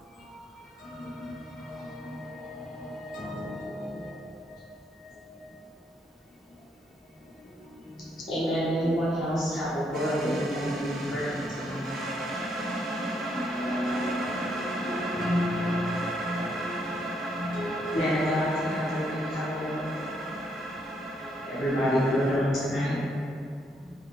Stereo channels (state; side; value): normal; both; correlation 0.74